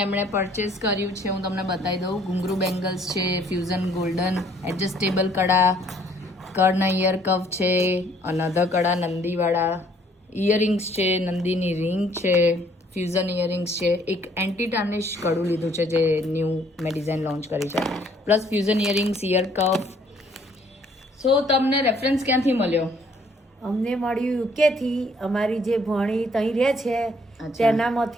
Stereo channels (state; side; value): normal; both; correlation 0.62